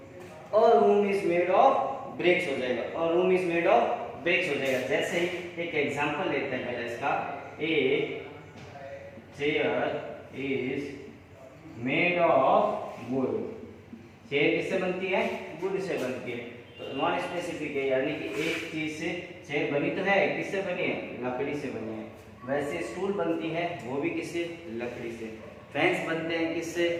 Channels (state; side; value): identical; both; correlation 1.00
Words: और room is made of BRICS हो जाएगा, और room is made of BRICS हो जाएगा। जैसे ही एक एग्जांपल लेते हैं पहले इसका, a chair is made of would, chair किससे बनती है? वुड से बनती है। तो नॉन स्पेसिफिक है, यानी कि एक चीज से चेयर बनी तो है, किससे बनी है? लकड़ी से बनी है। वैसे स्टूल बनती है, वो भी किससे? लकड़ी से। फैंस बनते हैं किससे?